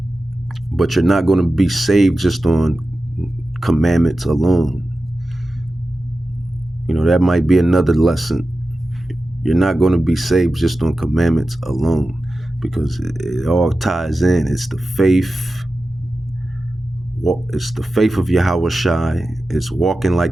But you're not going to be saved just on commandments alone. That might be another lesson. You're not going to be saved just on commandments alone, because it all ties in. It's the faith. It's the faith of Yahawah Shai. It's walking like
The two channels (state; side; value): normal; both; correlation 0.94